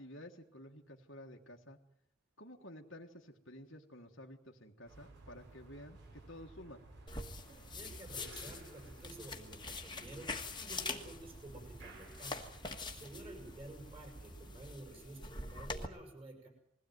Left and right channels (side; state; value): both; normal; correlation 0.32